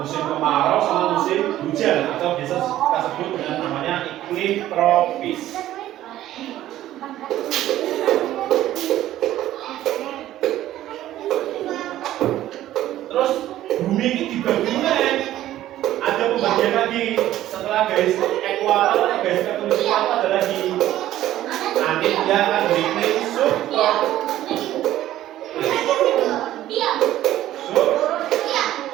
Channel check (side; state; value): left; quieter; 13.6 dB